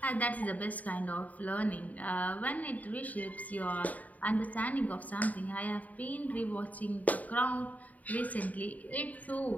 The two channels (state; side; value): late; right; 0.074 ms